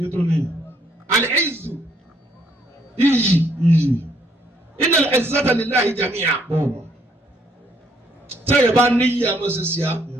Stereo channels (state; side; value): normal; both; correlation 0.67